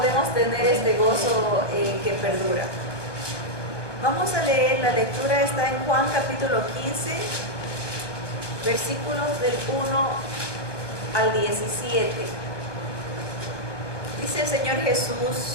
tener este gozo que perdura. Vamos a leer, la lectura está en Juan capítulo 15, versículos del 1 al 17. Dice el Señor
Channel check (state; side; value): late; right; 1.2 ms